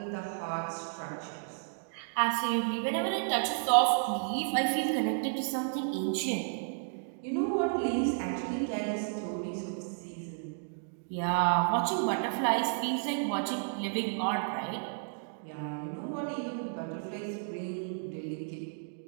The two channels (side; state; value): left; silent; digital silence